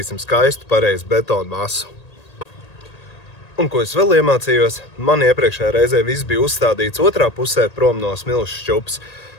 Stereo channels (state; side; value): late; right; 1.8 ms